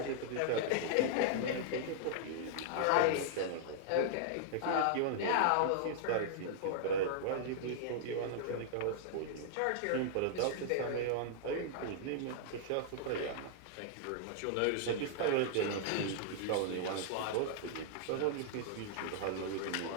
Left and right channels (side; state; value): both; different; correlation -0.01